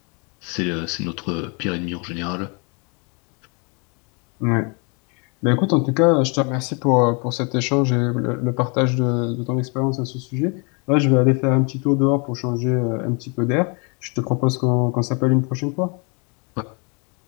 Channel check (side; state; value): right; quieter; 33.5 dB